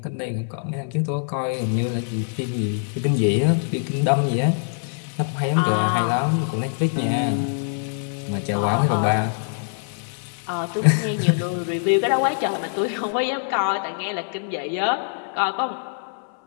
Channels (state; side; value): silent; right; 58 dB below the other